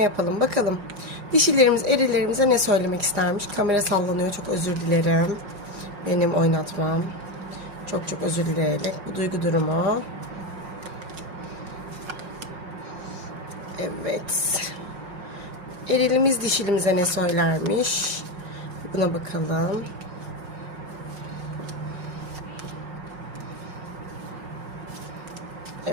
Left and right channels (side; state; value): left; late; 5.4 ms